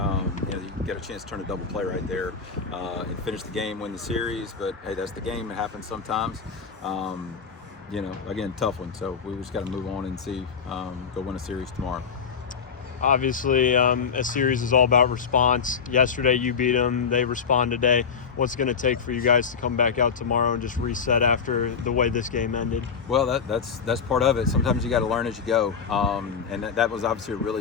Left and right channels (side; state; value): right; quieter; 6.2 dB